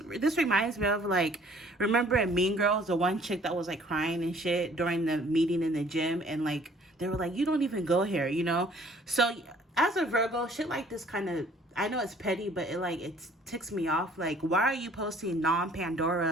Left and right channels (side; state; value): both; normal; correlation 0.56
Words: reminds me of remember in Mean Girls, the one chick that was crying and shit during the meeting in the gym, and they were like, you don't even go here, So as a Virgo, shit like this kind of, I know it's petty, but it ticks me off. Why are you posting